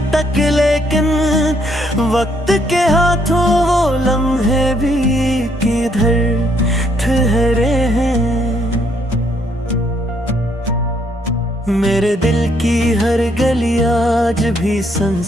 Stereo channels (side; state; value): both; normal; correlation 0.71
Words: तक लेकिन वक्त के हाथों वो लम्हे भी किधर ठहरे हैं। मेरे दिल की हर गली आज भी